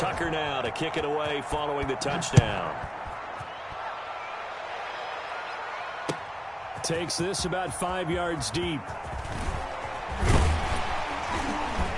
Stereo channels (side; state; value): both; identical; correlation 1.00